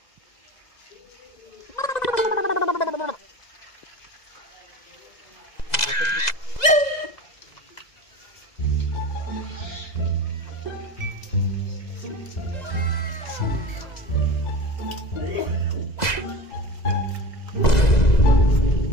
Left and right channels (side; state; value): right; late; 2.0 ms